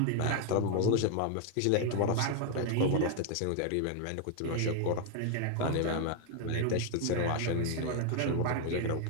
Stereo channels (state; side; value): different; both; correlation 0.00